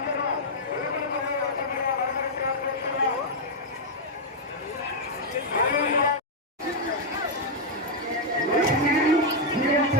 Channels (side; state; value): both; normal; correlation -0.03